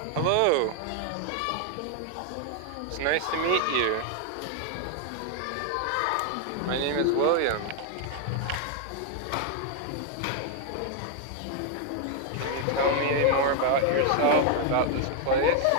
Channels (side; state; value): both; different; correlation 0.00